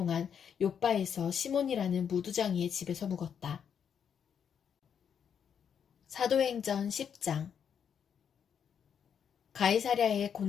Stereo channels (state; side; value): quieter; right; 7.8 dB